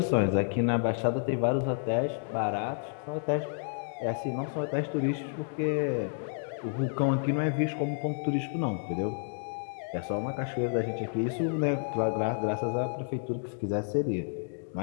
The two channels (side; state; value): right; silent; digital silence